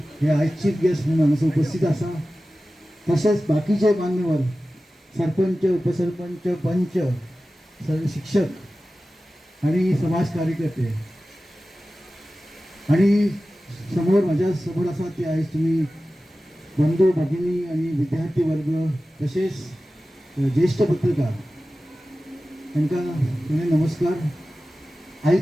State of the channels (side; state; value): both; normal; correlation 0.95